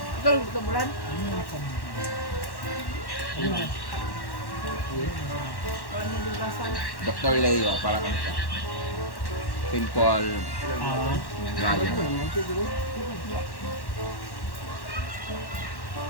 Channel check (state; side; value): late; right; 1.1 ms